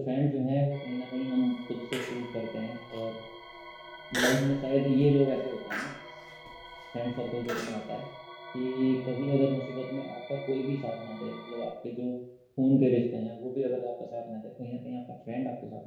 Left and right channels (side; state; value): both; identical; correlation 1.00